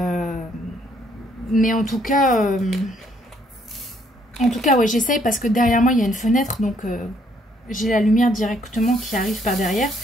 Mais en tout cas, ouais, j'essaye parce que derrière moi, il y a une fenêtre, donc j'ai la lumière directement qui arrive par derrière.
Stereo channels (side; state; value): both; normal; correlation 0.68